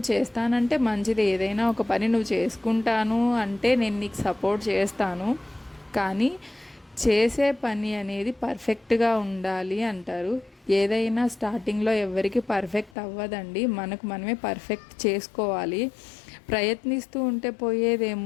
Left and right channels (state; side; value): drops out; right; at 13.0 s